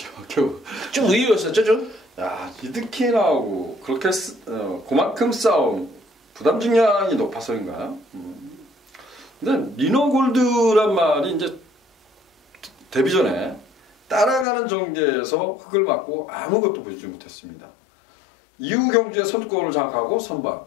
겨우. 좀 의외였었죠 좀? 야, 리드킨하고 그렇게 그만큼 싸움, 부담 중량이 높아서인가? 근데 리너골드란 말이 이제 데뷔 전에 따라가는 전개에서 흙을 맞고 아무것도 보여주지 못했습니다. 이후 경주에 선두권을 장악하고 선방,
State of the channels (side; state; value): right; drops out; at 14.5 s